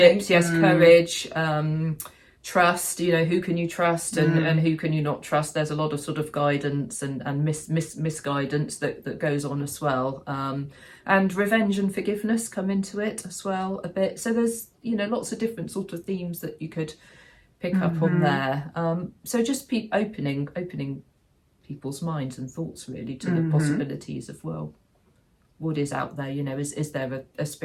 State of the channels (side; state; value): both; identical; correlation 1.00